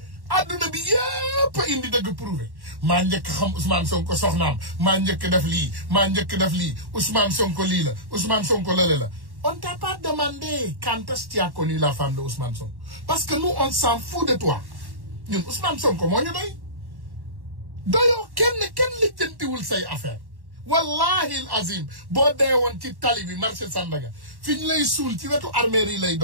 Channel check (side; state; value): left; late; 1.1 ms